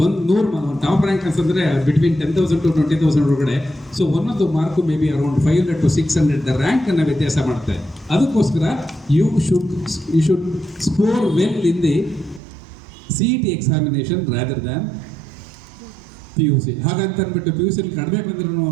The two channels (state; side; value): drops out; left; at 12.4 s